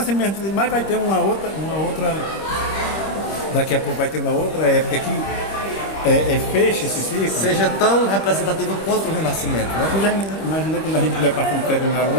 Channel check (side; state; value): right; late; 25 ms